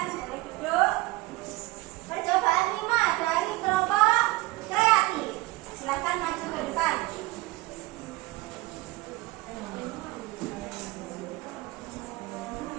boleh duduk. Percobaan 5 dari kelompok kreatif. Silakan maju ke depan.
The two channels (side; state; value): left; quieter; 20.9 dB